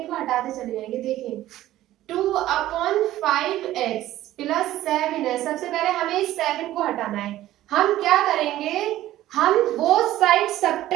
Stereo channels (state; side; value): quieter; left; 14.4 dB